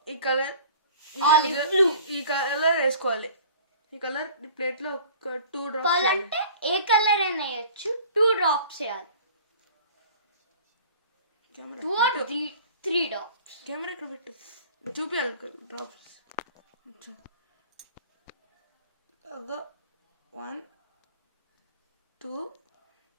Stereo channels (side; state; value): both; inverted; correlation -0.46